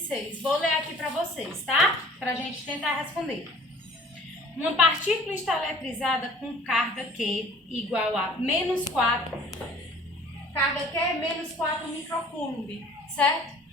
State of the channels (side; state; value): both; normal; correlation 0.50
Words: Vou ler aqui para vocês, tá? Para a gente tentar responder. Uma partícula está eletrizada com carga Q igual a menos 4. Carga Q é menos 4 microcoulomb, certo?